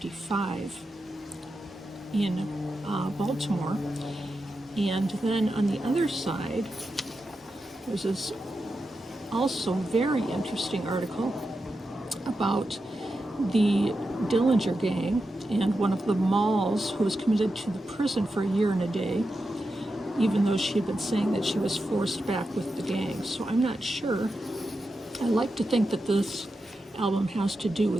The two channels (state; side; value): normal; both; correlation 0.89